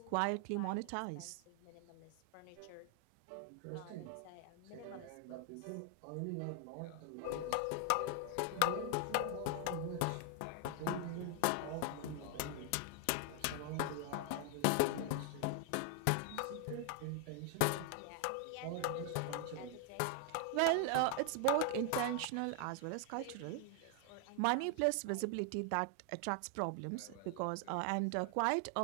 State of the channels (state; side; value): different; both; correlation 0.00